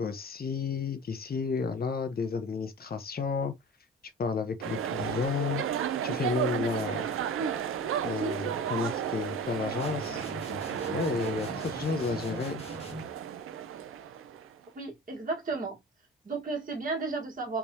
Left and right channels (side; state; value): both; normal; correlation 0.35